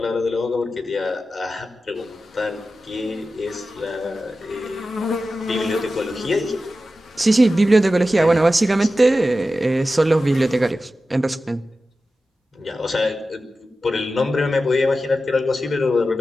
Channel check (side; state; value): both; normal; correlation 0.93